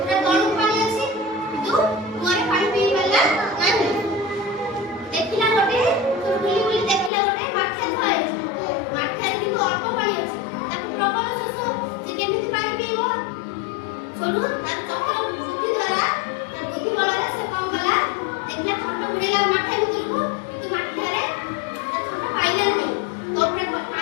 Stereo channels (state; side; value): drops out; right; at 7.1 s